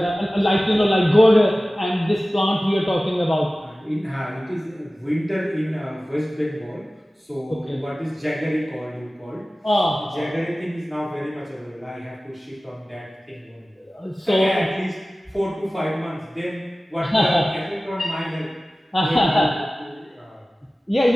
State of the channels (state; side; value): normal; both; correlation 0.97